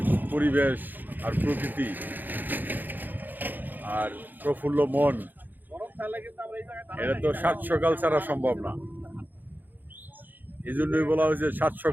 পরিবেশ আর প্রকৃতি আর প্রফুল্ল মন, এটা তো সাত সকাল ছাড়া সম্ভব না। এই জন্যই বলা হয়েছে সাত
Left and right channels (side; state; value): left; late; 0.087 ms